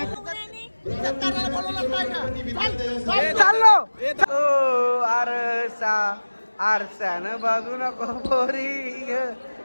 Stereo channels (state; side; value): inverted; both; correlation -1.00